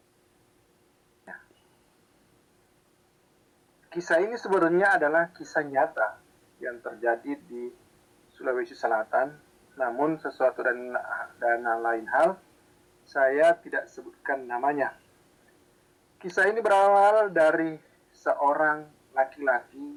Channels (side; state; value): both; identical; correlation 1.00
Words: kisah ini sebenarnya adalah kisah nyata yang terjadi di Sulawesi Selatan. Namun sesuatu dan lain hal saya tidak sebutkan namanya. Kisah ini berawal dari seorang